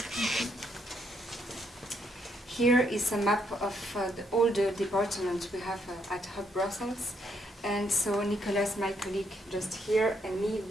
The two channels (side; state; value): both; normal; correlation 0.74